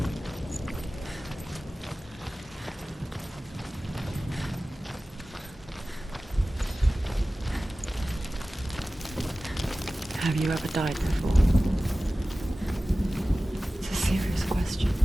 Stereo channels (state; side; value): normal; both; correlation 0.96